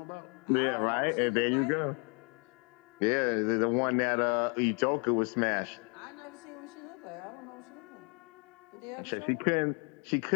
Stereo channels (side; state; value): right; quieter; 35.6 dB